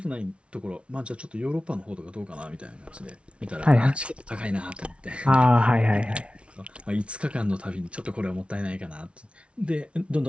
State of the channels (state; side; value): late; left; 0.060 ms